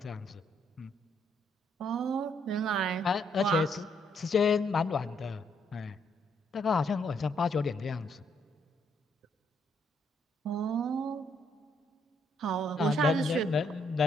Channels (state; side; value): normal; both; correlation 0.72